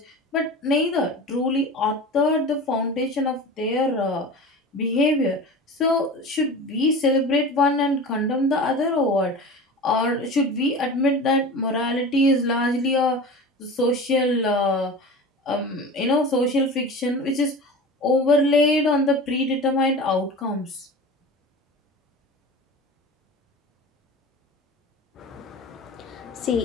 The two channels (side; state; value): both; normal; correlation 0.33